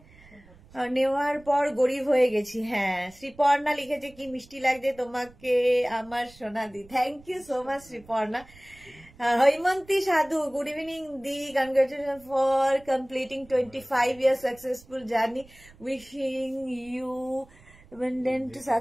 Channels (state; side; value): noise; right; rumble, 25 dB below the sound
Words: নেওয়ার পর গরিব হয়ে গেছি। হ্যাঁ, শ্রীপর্ণা লিখেছে কি মিষ্টি লাগছে তোমাকে আমার সোনা দি, thank you so much Sreeparna. Haimanti Sadhu, good evening Di, congratulations for completing 25 years successful journey, wishing you abundant